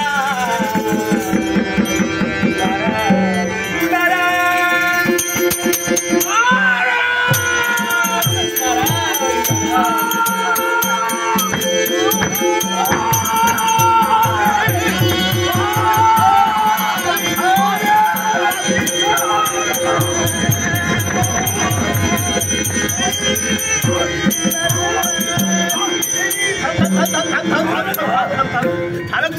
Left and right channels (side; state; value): both; identical; correlation 1.00